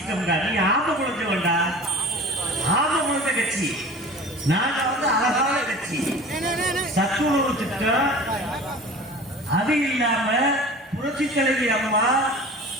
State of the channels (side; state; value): both; normal; correlation 0.39